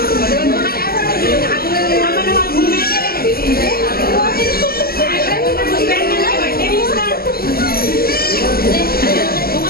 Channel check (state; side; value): late; right; 0.44 ms